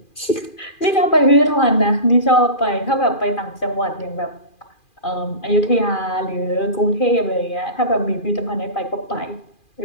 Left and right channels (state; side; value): late; right; 2.4 ms